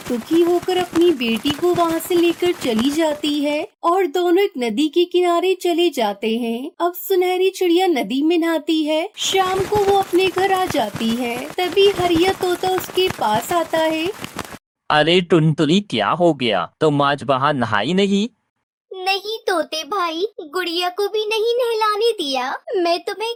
दुखी होकर अपनी बेटी को वहाँ से लेकर चली जाती है और दोनों एक नदी के किनारे चले जाते हैं। अब सुनहरी चिड़िया नदी में नहाती है। शाम को वो अपने घर आ जाती है। तभी हरिया तोता उसके पास आता है। अरे टुनटुनी, क्या हो गया? तुम आज वहाँ नहाई नहीं? नहीं तोते भाई, गुड़िया को भी नहीं नहलाने दिया। मैं तुम्हें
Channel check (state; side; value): identical; both; correlation 1.00